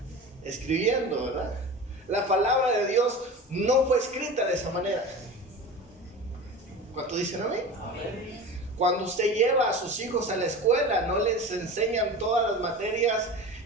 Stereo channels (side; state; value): both; normal; correlation 0.32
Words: escribiendo, ¿verdad? La palabra de Dios no fue escrita de esa manera. ¿Cuánto dicen amén? Amén. Cuando usted lleva a sus hijos a la escuela, no les enseñan todas las materias